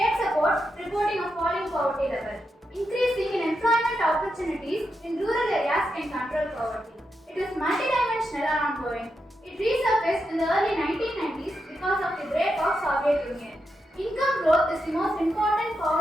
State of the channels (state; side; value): normal; both; correlation 0.85